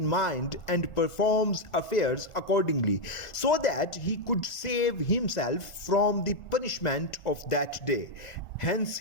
mind and performs affairs accordingly, so that he could save himself from the punishment of that day. Hence,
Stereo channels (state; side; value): late; right; 1.4 ms